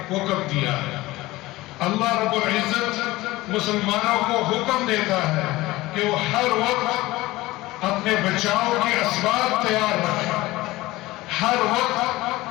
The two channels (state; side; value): quieter; right; 18.9 dB